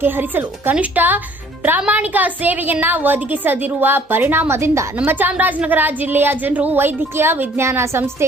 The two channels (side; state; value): both; normal; correlation 0.56